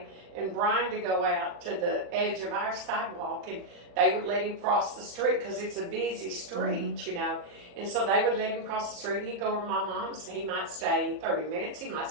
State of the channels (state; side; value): late; left; 40 ms